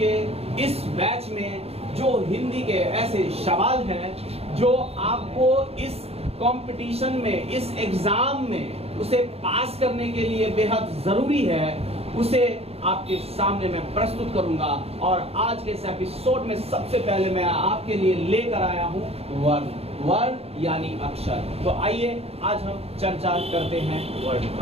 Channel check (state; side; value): late; left; 0.29 ms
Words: इस बैच में जो हिंदी के ऐसे सवाल हैं जो आपको इस कंपटीशन में, इस एग्जाम में उसे पास करने के लिए बेहद जरूरी है, उसे आपके सामने मैं प्रस्तुत करूंगा। और आज के इस एपिसोड में सबसे पहले मैं आपके लिए लेकर आया हूं वर्ण। वर्ण यानी अक्षर। तो आइए आज हम चर्चा करते हैं वर्ण